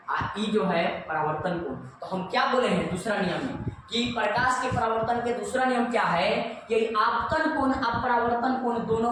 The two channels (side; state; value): both; identical; correlation 1.00